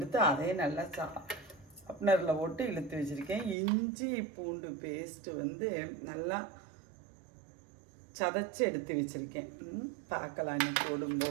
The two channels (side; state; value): left; drops out; at 3.6 s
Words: அதே நல்லா ஷார்ப்னரில் போட்டு இழுத்து வச்சுருக்கேன். இஞ்சி பூண்டு பேஸ்ட்டு நல்லா சதைச்சி எடுத்து வச்சுருக்கேன். பார்க்கலாம் இன்னும்